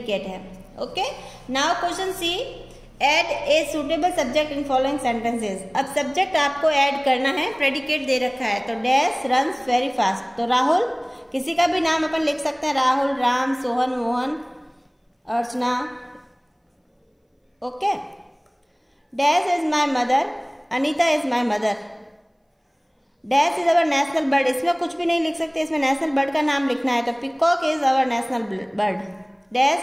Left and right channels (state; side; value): identical; both; correlation 1.00